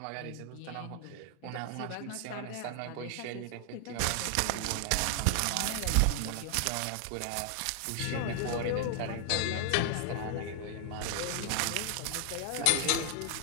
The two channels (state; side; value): different; both; correlation 0.00